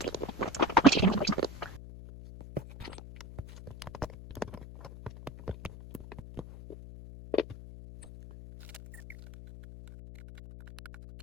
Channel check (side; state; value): left; noise; hum, 14 dB below the sound